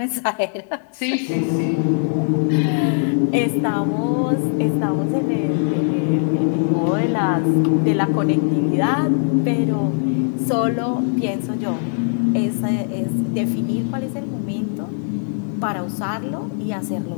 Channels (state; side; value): silent; right; digital silence